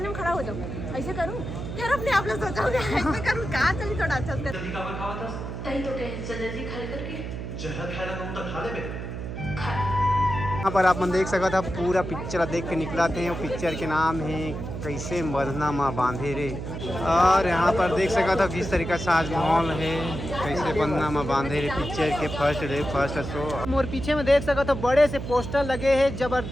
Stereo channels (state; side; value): noise; right; hum, 7 dB below the sound